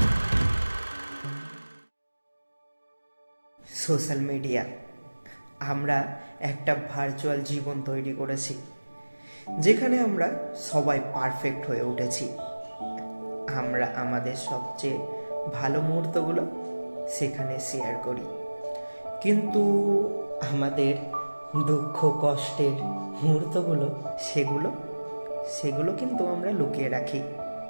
Social media, আমরা একটা virtual জীবন তৈরি করেছি যেখানে আমরা সবাই পারফেক্ট হয়ে উঠেছি। আমরা আমাদের সবচেয়ে ভালো মুহূর্তগুলো সেখানে শেয়ার করি, কিন্তু আমাদের দুঃখ কষ্টের মুহূর্তগুলো সেগুলো কিন্তু আমরা লুকিয়ে রাখি।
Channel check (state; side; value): inverted; both; correlation -1.00